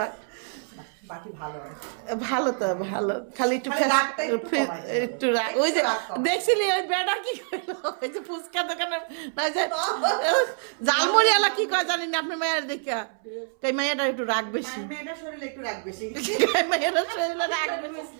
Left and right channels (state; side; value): silent; left; 61 dB below the other